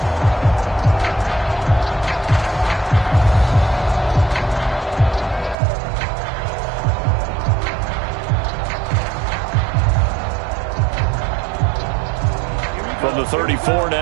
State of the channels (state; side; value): drops out; left; at 5.6 s